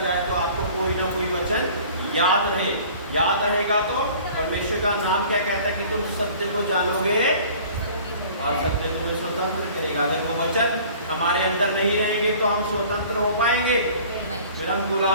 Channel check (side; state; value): both; inverted; correlation -0.48